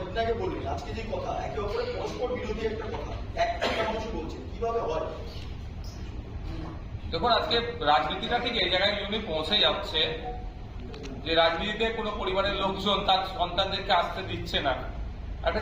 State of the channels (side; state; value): both; identical; correlation 1.00